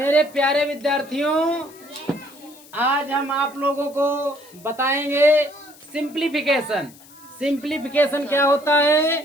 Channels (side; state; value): left; noise; hiss, 23 dB below the sound